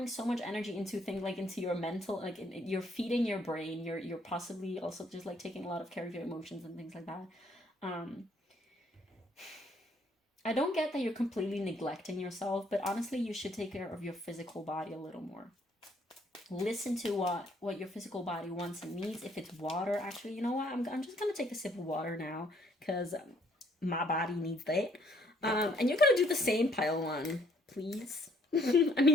so much energy into things like into your mental, like you're feeding your brain. You're possibly also just like taking a lot of care of your emotions and things like that. Um, I don't get that you're completely neglecting yourself, but honestly, you should take care of your physical body a little more. Listen to what your physical body wants and needs. If it's water, actually, you know what? I'm just gonna take a sip of water now because my body needs that. And you're gonna do the same, pile one, please. I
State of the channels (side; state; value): both; normal; correlation 0.66